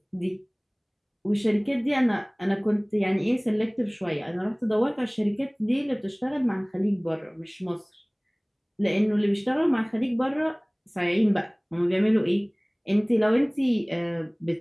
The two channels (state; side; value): identical; both; correlation 1.00